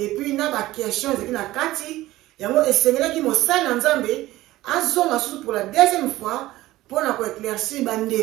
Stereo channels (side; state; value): left; quieter; 16.8 dB